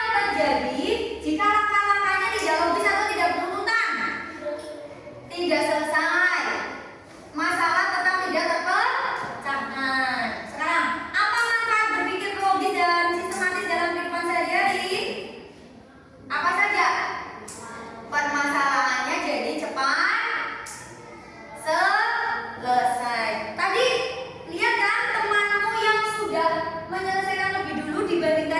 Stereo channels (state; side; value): identical; both; correlation 1.00